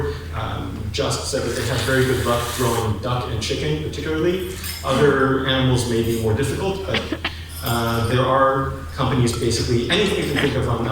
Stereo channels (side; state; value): both; identical; correlation 1.00